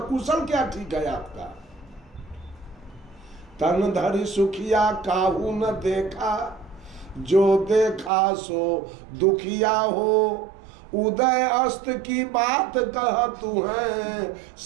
कुशल क्या ठीक है आपका? तन धरि सुखिया काहू न देखा, जो देखा सो दुखिया हो। उदय अस्त की बात कह तू है,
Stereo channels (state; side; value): drops out; left; at 8.1 s